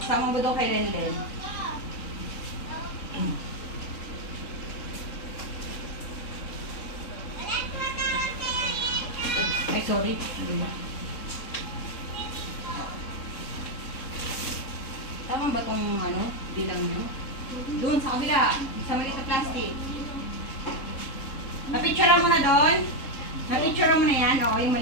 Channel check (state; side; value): late; right; 3.6 ms